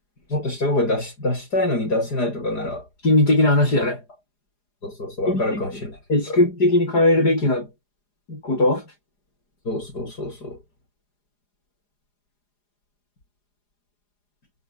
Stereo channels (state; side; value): late; right; 4.9 ms